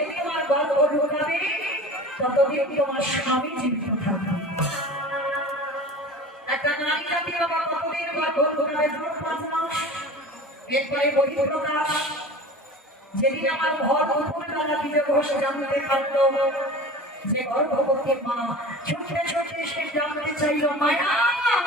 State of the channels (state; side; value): normal; both; correlation 0.37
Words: তোমার গর্ভ ঢুকাবে ততদিন তোমার স্বামী জীবিত থাকবে। একটা নারী জাতি বাবা কতদিন গর্ভ ঢুকাবে? 5 মাস, এরপরে বহিঃপ্রকাশ। যেদিন আমার ঘর উপরবেলা বিজয় ঘোষ জানতে পারলো যে গর্ভবতী মা, ছুটে ছুটে সে জানতে চাইল, মায়া